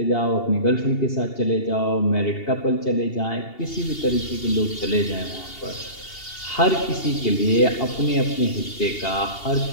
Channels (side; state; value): right; late; 2.8 ms